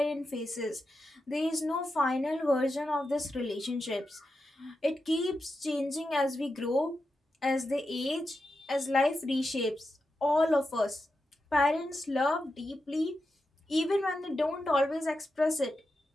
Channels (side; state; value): both; normal; correlation 0.89